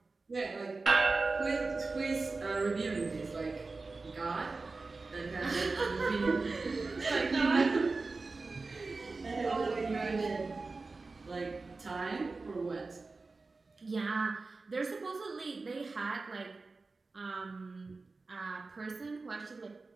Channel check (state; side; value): quieter; left; 3.8 dB